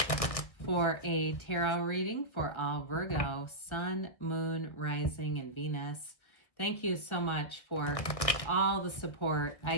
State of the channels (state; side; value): late; right; 1.6 ms